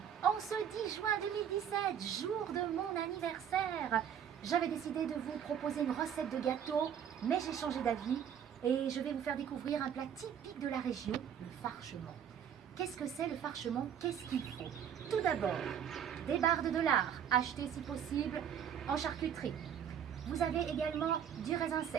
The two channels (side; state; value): left; quieter; 8.7 dB